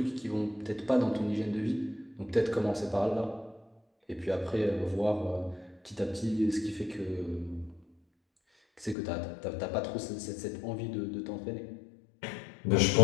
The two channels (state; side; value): drops out; right; at 9.0 s